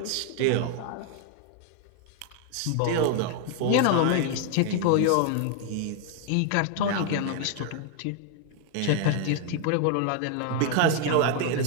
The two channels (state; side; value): different; both; correlation 0.00